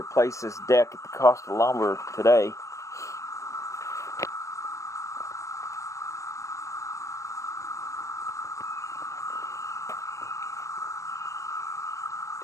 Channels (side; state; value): right; late; 0.15 ms